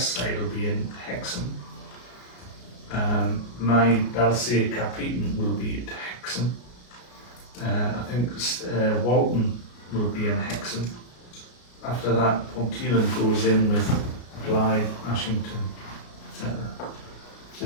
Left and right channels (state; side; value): late; right; 33 ms